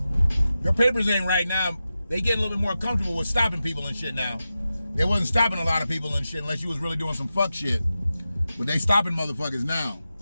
Your papers ain't right now. They get a little bit more comfortable with stopping people and shit now. They wasn't stopping a lot of people and shit unless you was really doing some fuck shit. But they stopping motherfuckers now.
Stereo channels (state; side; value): inverted; both; correlation -0.92